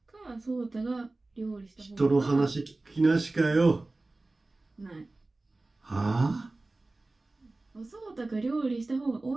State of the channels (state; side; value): quieter; left; 3.1 dB